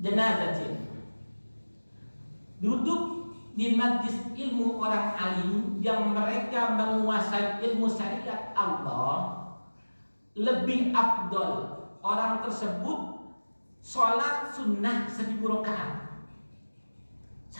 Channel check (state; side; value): inverted; both; correlation -1.00